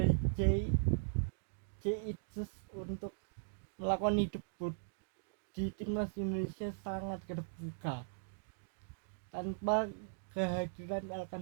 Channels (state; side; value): silent; left; digital silence